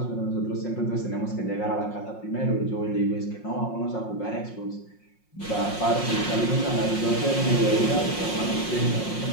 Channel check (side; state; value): right; late; 5.6 ms